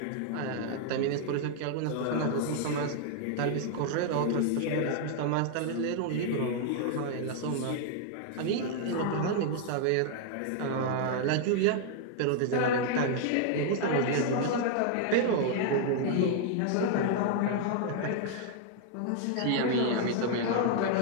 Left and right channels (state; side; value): different; both; correlation 0.00